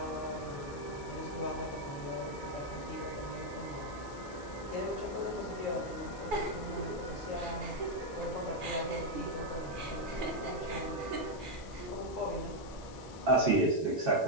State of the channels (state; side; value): noise; left; hiss, 19 dB below the sound